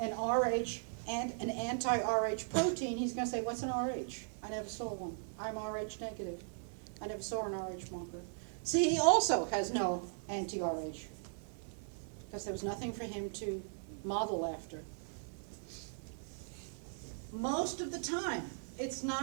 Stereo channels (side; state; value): left; silent; 52 dB below the other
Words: RH and an anti-RH protein, he's going to say, what's an RH? I never saw one. I'm RH negative. I never saw an RH marker. See, he also has no anti-RH, because there was nothing for him to model after. Most of the time, it's